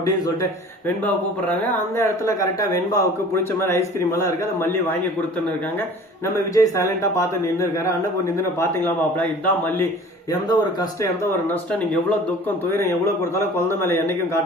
சொல்லிட்டு வெண்பாவை கூப்பிடுறாங்க. அந்த இடத்துல கரெக்டா வெண்பாவுக்கு பிடிச்ச மாதிரி ஐஸ்கிரீம் எல்லாம் இருக்கு, அதை மல்லி வாங்கி கொடுத்துன்னு இருக்காங்க. நம்ம விஜய் சைலண்டா பார்த்து நின்று இருக்காரு. அண்ணன் நின்று பாத்தீங்களா மாப்பிள, இதுதான் மல்லி. எந்த ஒரு கஷ்டம் எந்த ஒரு நஷ்டம், நீங்க எவ்வளவு துக்கம் துயரம் எவ்வளவு கொடுத்தாலும் குழந்தை மேல என்னைக்கும்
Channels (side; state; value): both; normal; correlation 0.45